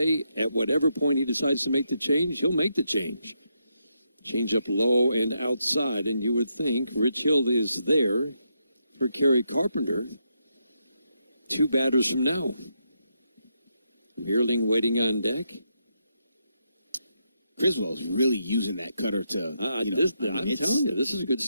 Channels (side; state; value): both; inverted; correlation -0.81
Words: at whatever point he decides to make the change, he'll make the change. Change up low and outside, and you would think Rich Hill is there for Kerry Carpenter. 2 batters from now. Meerling waiting on deck. Criswell's really using that cutter to, I'm telling you, this is good